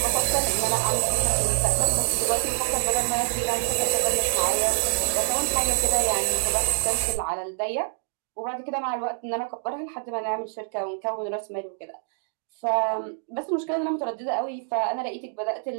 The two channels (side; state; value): left; silent; digital silence